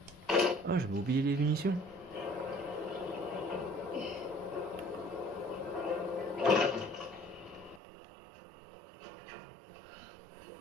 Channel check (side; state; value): left; drops out; at 7.8 s